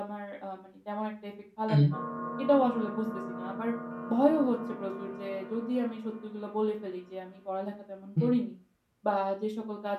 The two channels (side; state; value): both; identical; correlation 1.00